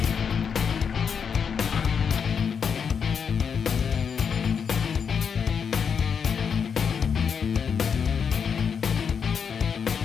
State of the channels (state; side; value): quieter; right; 6.7 dB